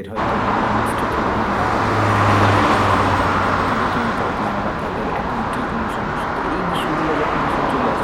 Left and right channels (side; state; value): both; identical; correlation 1.00